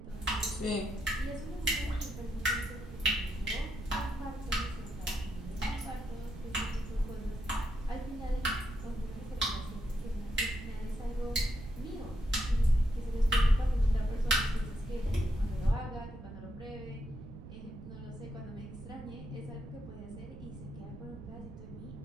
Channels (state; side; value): noise; right; rumble, 13 dB below the sound